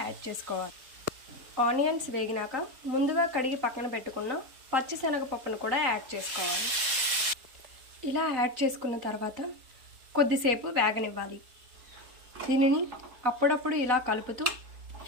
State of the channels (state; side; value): late; left; 3.9 ms